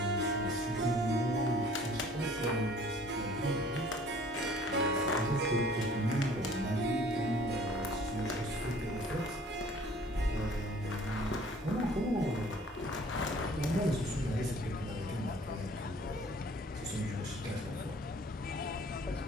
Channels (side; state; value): both; normal; correlation 0.52